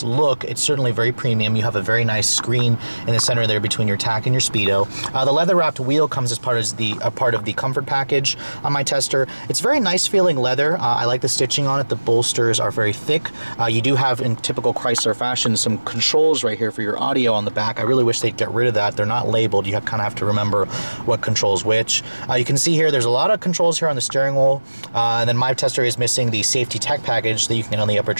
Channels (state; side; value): inverted; both; correlation -1.00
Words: look, it's certainly very premium. You have a very nice screen in the center there between your tack and your speedo. The leather wrapped wheel comes as part of the comfort package on my tester. It's very nice feeling leather. I like the stitching on it. The bolsters are very thick. You do have, in typical Chrysler fashion, some controls right here for your audio on the back. I really wish they'd get rid of that. They're not labeled. You kind of have to remember what controls which. You can see here there's a lot of controls here on the steering wheel, and then my tester is missing the safety tech package that you can get on the upper